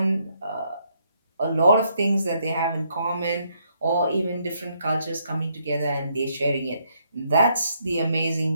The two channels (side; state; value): both; inverted; correlation -0.73